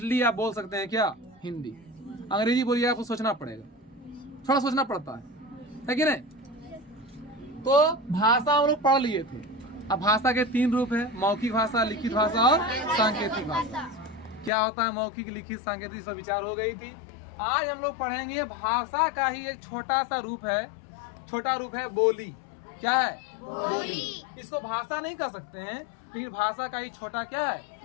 आप बोल सकते हैं। क्या? हिंदी। अंग्रेजी बोलिए आपको सोचना पड़ेगा, थोड़ा सोचना पड़ता है कि नहीं? तो भाषा हम लोग पढ़ लिए थे। अब भाषा के 3 रूप है, मौखिक भाषा, लिखित भाषा और सांकेतिक भाषा। क्या होता है मौखिक, लिखित, सांकेतिक, सब विचार हो गई थी। आज हम लोग पढ़ेंगे भाषा का ही एक छोटा सा रूप है, छोटा रूप है बोली। क्या है? बोली। इसको भाषा नहीं कह सकते हैं, लेकिन भाषा का ही छोटा क्या है?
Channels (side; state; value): right; drops out; at 14.5 s